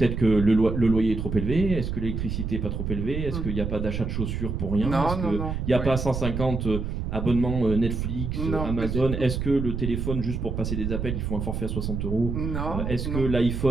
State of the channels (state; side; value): noise; right; rumble, 3 dB below the sound